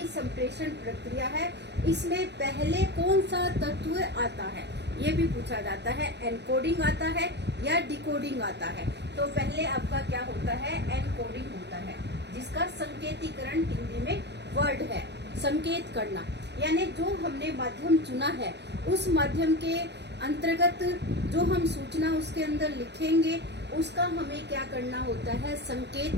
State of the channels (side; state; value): left; late; 0.50 ms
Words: संप्रेषण प्रक्रिया है इसमें पहले कौन सा तत्व आता है, ये भी पूछा जाता है। एनकोडिंग आता है या डिकोडिंग आता है। तो पहले आपका क्या होता है? एनकोडिंग होता है, जिसका संकेतीकरण हिंदी में वर्ड है, संकेत करना। यानी जो हमने माध्यम चुना है उस माध्यम के अंतर्गत जो हम सूचना उसके अंदर लिखेंगे उसका हमें क्या करना होता है? संकेत